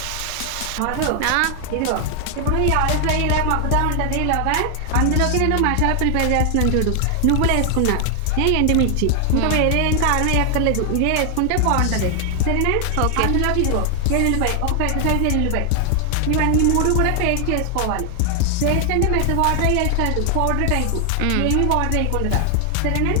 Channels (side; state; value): both; different; correlation 0.00